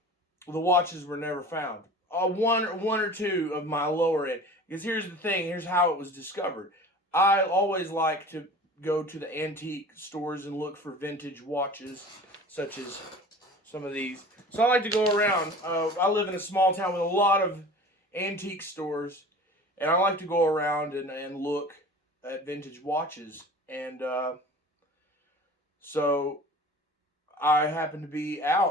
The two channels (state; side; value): normal; both; correlation 0.40